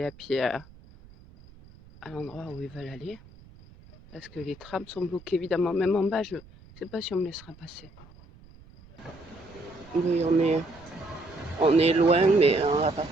à pied à l'endroit où ils veulent aller. Parce que les trams sont bloqués évidemment, même en bas, je ne sais pas si on me laissera passer. Oui, on est loin, mais à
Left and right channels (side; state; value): right; noise; rumble, 23 dB below the sound